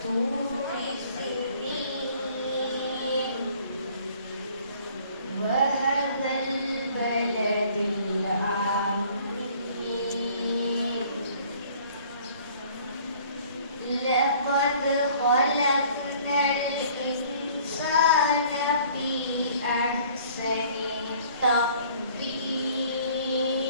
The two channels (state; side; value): inverted; both; correlation -0.55